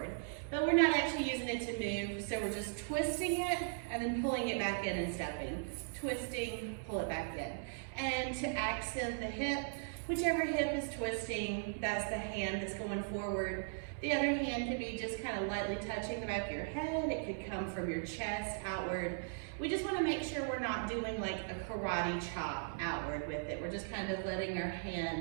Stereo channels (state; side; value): silent; left; digital silence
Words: But we're not actually using it to move, so we're just twisting it and then pulling it back in and stepping. Twisting, pull it back in. And to accent the hip, whichever hip is twisting, that's the hand that's going forward. The other hand could be just kind of lightly touching the back of your head. It could come from your chest outward. We just want to make sure we're not doing like a karate chop outward with it. We're just kind of letting our